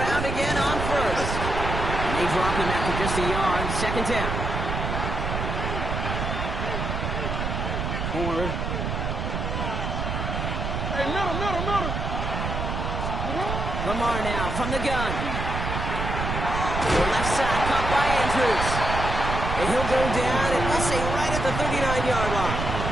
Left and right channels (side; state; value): right; noise; rumble, 3 dB below the sound